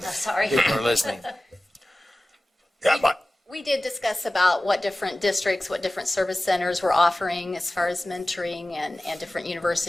Sorry. People are listening. We did discuss about what different districts, what different service centers were offering as far as mentoring and different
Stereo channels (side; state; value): both; normal; correlation 0.96